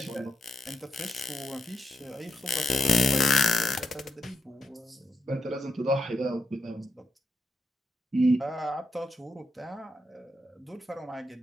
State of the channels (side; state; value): both; normal; correlation 0.82